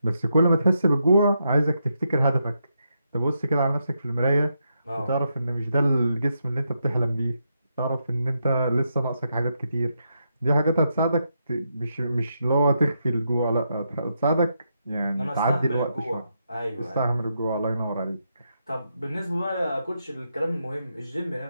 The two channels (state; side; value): inverted; both; correlation -0.82